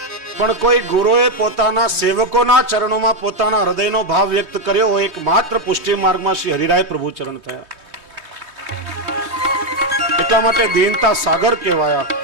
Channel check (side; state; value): left; late; 3.2 ms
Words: પણ કોઈ ગુરુએ પોતાના સેવકોના ચરણોમાં પોતાના હૃદયનો ભાવ વ્યક્ત કર્યો હોય એકમાત્ર પુષ્ટિ માર્ગમાં શ્રી હરિરાય પ્રભુ ચરણ થયા. એટલા માટે દીનતા સાગર કહેવાયા.